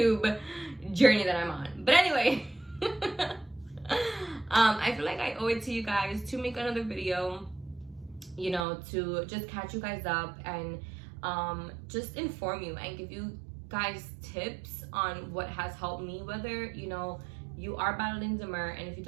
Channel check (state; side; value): drops out; left; at 8.7 s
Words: journey that I'm on. But anyway, I feel like I owe it to you guys to make another video, you know, to just catch you guys up and just inform you and give you guys tips on what has helped me, whether, you know, you are battling D-MER. And if you